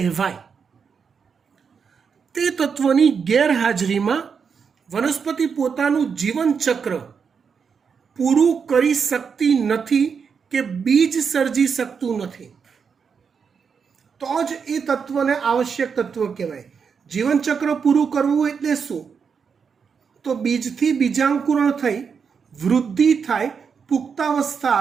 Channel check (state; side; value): quieter; left; 6.2 dB